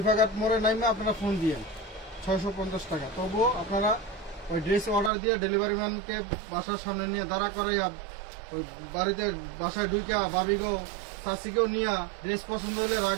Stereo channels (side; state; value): left; drops out; at 5.1 s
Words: মোড়ে নামে আপনারা ফোন দিয়েন। 650 টাকা। তবুও আপনারা ওই ড্রেস অর্ডার দিয়ে ডেলিভারি ম্যানকে বাসার সামনে নিয়ে দাঁড়া করে ওই বাড়িতে বাসায় ঢুকে ভাবিকেও চাষিকেও নিয়ে ড্রেস পছন্দ হলে